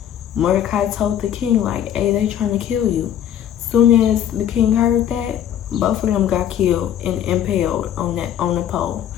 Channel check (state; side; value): quieter; right; 10.2 dB